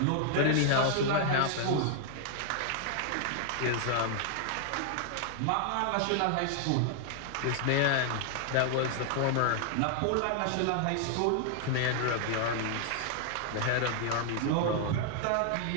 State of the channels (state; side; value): different; both; correlation 0.00